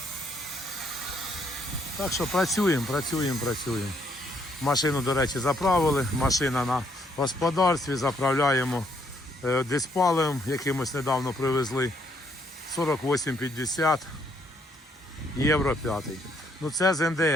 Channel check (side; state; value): both; normal; correlation 0.70